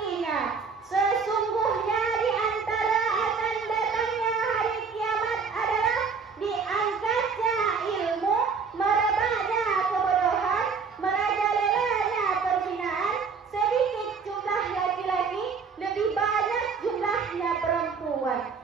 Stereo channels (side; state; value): left; quieter; 5.4 dB